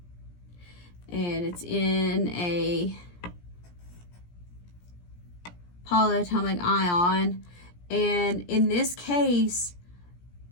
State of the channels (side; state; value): right; late; 17 ms